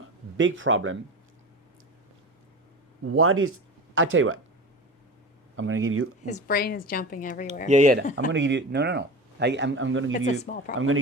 big problem. I tell you what, I'm going to give you. His brain is jumping everywhere. Yeah. I'm going to give you, no. I'm going to give you. It's a small problem. I'm going to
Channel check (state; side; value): normal; both; correlation 0.30